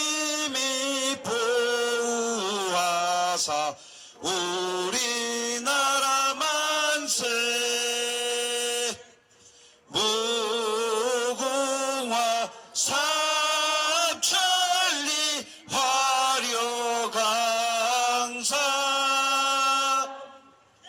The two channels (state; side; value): identical; both; correlation 1.00